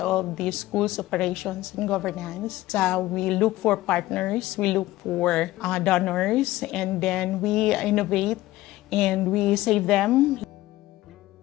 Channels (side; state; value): right; quieter; 16.8 dB